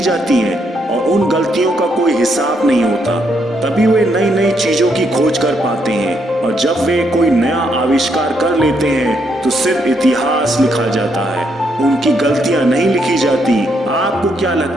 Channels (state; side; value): normal; both; correlation 0.75